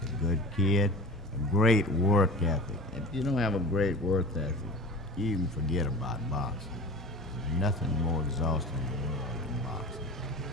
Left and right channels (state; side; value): normal; both; correlation 0.36